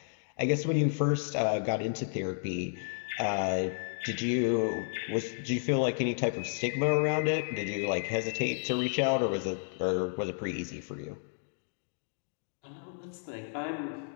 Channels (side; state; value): right; silent; digital silence